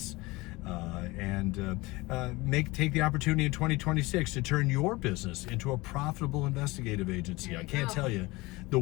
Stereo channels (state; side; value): quieter; right; 22.1 dB